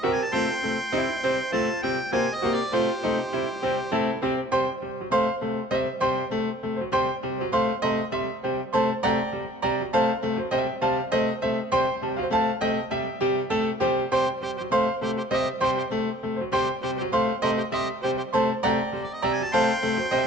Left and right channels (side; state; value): both; normal; correlation 0.56